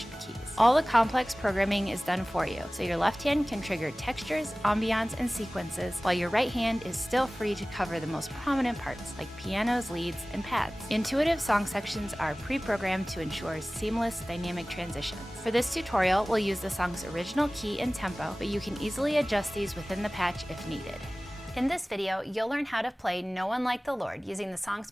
keys. All the complex programming is done for you, so your left hand can trigger textures, ambiance, and sequences, while your right hand is still free to cover the most prominent parts like pianos, leads, and pads. Intuitive song sections are pre-programmed to ensure seamless dynamic transitions. For this tutorial, we'll use the song's original key and tempo, but you can easily adjust these within the patch if needed. In this video, you'll learn how to play No One Like the Lord using the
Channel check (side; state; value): both; normal; correlation 0.98